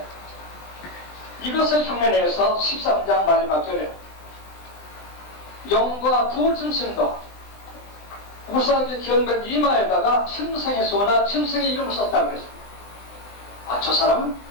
이것을 흉내내서 13장 마지막 절에 영과 두 짐승도 우사하게 기억된 이마에다가 짐승의 수나 짐승의 이름을 썼다고 그랬습니다. 아, 저 사람은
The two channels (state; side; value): late; right; 20 ms